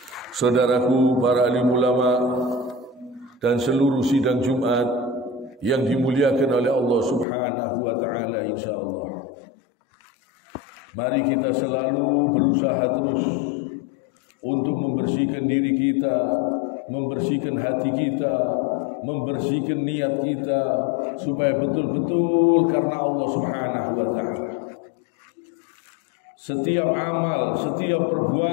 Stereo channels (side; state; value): right; drops out; at 7.2 s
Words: Saudaraku para alim ulama dan seluruh sidang Jumat yang dimuliakan oleh Allah Subhanahu wa taala, insyaallah. Mari kita selalu berusaha terus untuk membersihkan diri kita, membersihkan hati kita, membersihkan niat kita supaya betul-betul karena Allah Subhanahu wa taala. Setiap amal, setiap